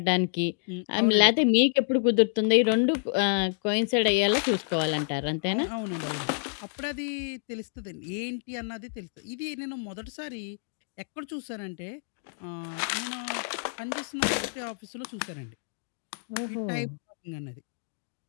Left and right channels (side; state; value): right; silent; digital silence